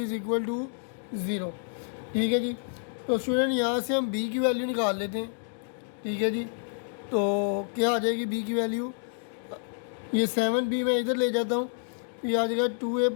equal to 0। ठीक है जी। तो स्टूडेंट यहाँ से हम b की वैल्यू निकाल लेते हैं। ठीक है जी। तो क्या आ जाएगी b की वैल्यू, ये 7b मैं इधर ले जाता हूँ, ये आ जाएगा 2a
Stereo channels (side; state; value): right; silent; digital silence